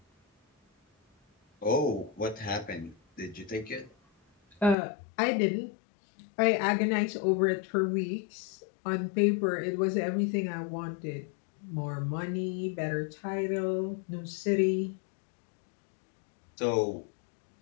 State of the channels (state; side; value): drops out; right; at 4.8 s